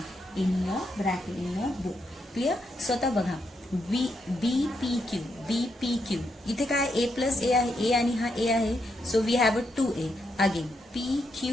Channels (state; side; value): normal; both; correlation 0.80